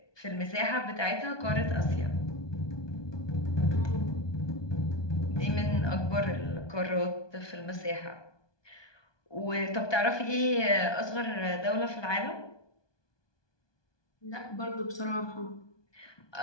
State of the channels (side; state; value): right; late; 1.2 ms